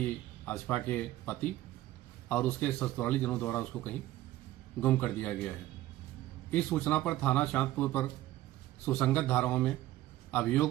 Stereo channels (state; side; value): quieter; left; 15.3 dB